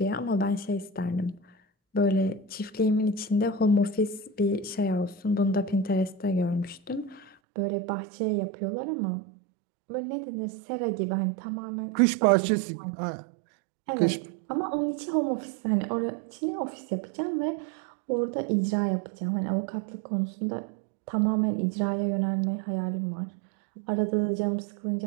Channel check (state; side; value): drops out; left; at 7.4 s